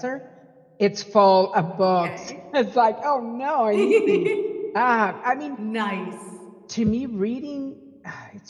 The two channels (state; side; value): identical; both; correlation 1.00